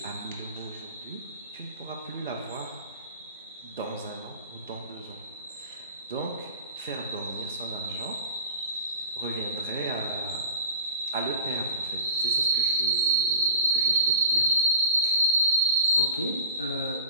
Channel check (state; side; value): inverted; both; correlation -0.38